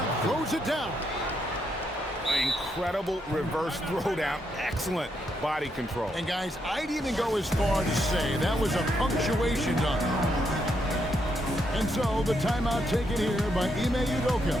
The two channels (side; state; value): both; normal; correlation 0.78